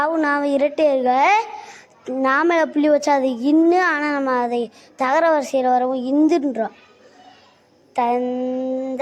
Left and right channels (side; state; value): both; identical; correlation 1.00